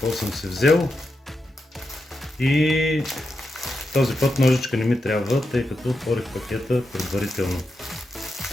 съм си взел. И този път ножичка не ми трябва, тъй като отворих пакета предварително.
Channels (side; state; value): both; normal; correlation 0.87